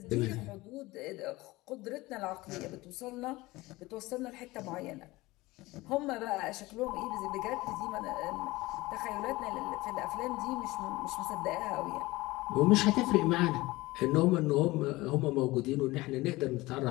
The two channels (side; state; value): right; quieter; 20.2 dB